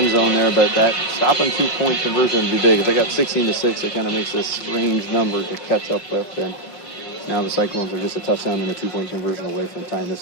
zone there, but that stopping 2-point conversion would be big. If they got 16-6, it kind of makes this strange number to catch up with. And now the Cyclones are just a touchdown and a 2-point conversion away from tying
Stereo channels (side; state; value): right; late; 5.6 ms